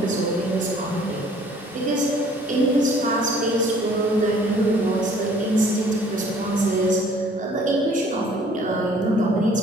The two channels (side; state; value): both; normal; correlation 0.55